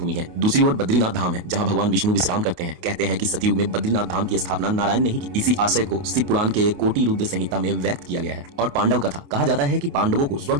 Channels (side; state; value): left; late; 29 ms